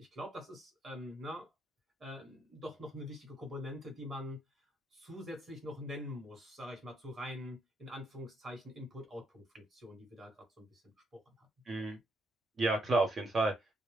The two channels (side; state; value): both; normal; correlation 0.75